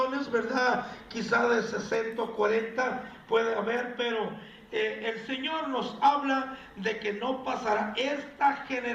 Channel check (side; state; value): both; identical; correlation 1.00